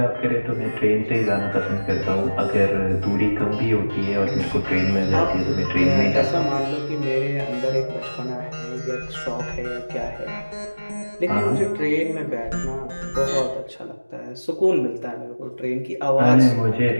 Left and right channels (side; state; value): both; inverted; correlation -1.00